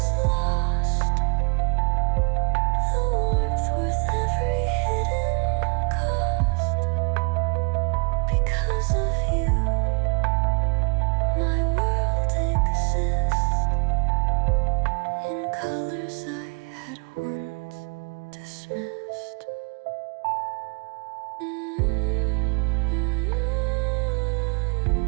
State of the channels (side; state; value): left; quieter; 33.9 dB